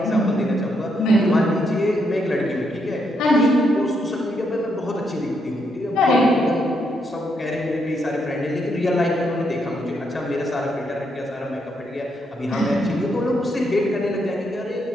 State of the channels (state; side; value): normal; both; correlation 0.78